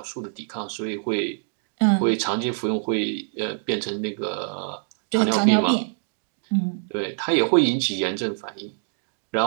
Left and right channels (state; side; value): silent; left; 62 dB below the other